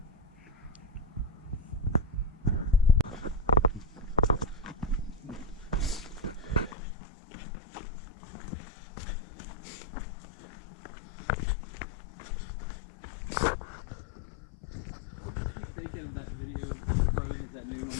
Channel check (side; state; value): right; drops out; at 6.8 s